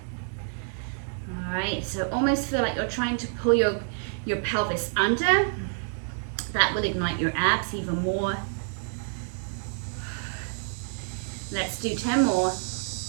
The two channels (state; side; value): silent; left; digital silence